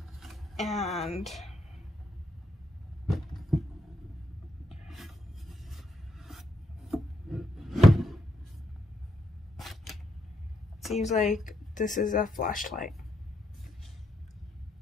and seems like this is a flashlight.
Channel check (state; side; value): normal; both; correlation 0.79